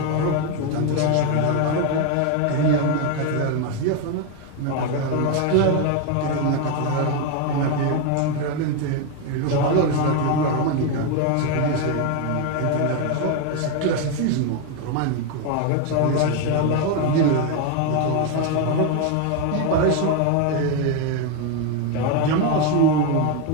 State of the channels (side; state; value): both; different; correlation 0.02